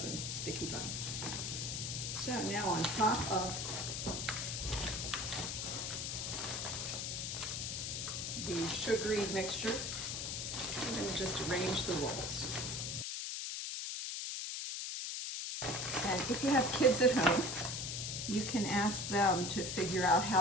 sticky buns. So now on top of the sugary mixture, I'm going to just arrange the rolls. And if you have kids at home, you can ask them to figure out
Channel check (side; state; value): left; noise; hiss, 3 dB below the sound